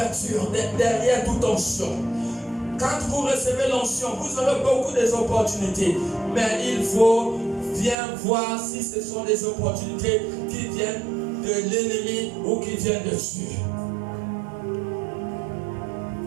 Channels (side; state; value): left; drops out; at 8.0 s